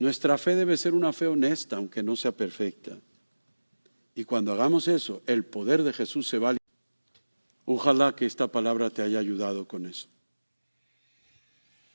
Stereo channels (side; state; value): both; inverted; correlation -1.00